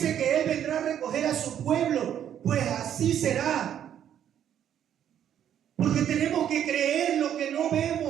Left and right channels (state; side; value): quieter; left; 9.9 dB